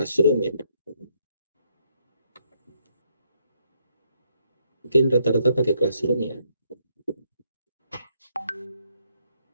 ya? Mungkin rata-rata pakai Classroom ya.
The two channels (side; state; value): both; inverted; correlation -0.74